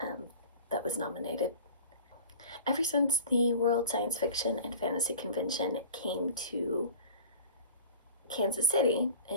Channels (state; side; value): inverted; both; correlation -0.42